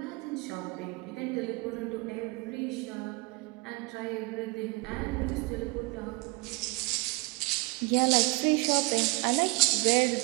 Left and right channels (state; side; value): quieter; left; 26.0 dB